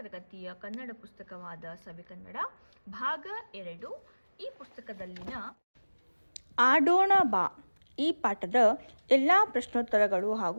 ಕನ್ನಡ ಪುಸ್ತಕವಾದ ಸವಿಕನ್ನಡ ಭಾಗ 2 ಈ ಪುಸ್ತಕದಲ್ಲಿನ ಆಡೋಣ ಬಾ ಈ ಪಾಠದ ಎಲ್ಲ ಪ್ರಶ್ನೋತ್ತರಗಳು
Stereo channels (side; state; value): both; inverted; correlation -1.00